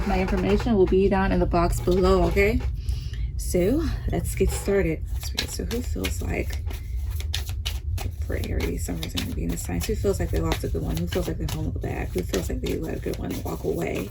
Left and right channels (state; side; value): identical; both; correlation 1.00